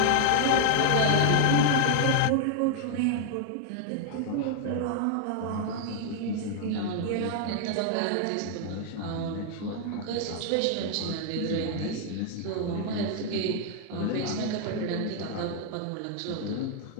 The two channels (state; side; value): different; both; correlation 0.00